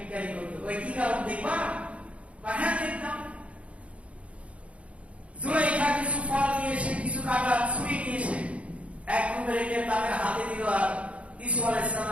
করতো। ওই কি কারণ দেখবা? হ্যাঁ দেখতাম। জুলেখা কিছু ফল নিয়ে এসে, কিছু কাটা ছুরি নিয়ে এসে এক রুমে রেখে তাদের হাতে দিল আর ইউসুফ আলাইহিস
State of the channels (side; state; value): left; late; 0.063 ms